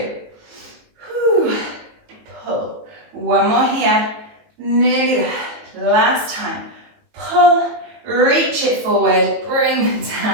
Whew. Pull. 1 more here. Nearly there. Last time. Pull. Reach it forward. Bring them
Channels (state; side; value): late; left; 19 ms